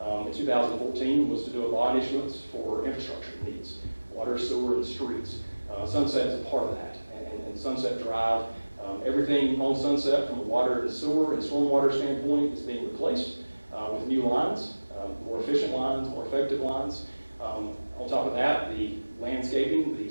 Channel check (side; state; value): both; inverted; correlation -1.00